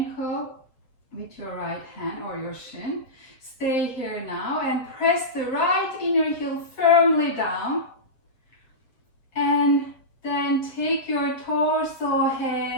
with your right hand or your shin. Stay here now and press the right inner heel firmly down. And then take your torso,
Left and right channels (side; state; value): right; late; 7.4 ms